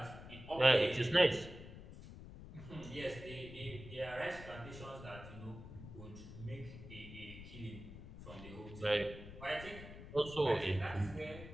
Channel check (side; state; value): left; noise; rumble, 13 dB below the sound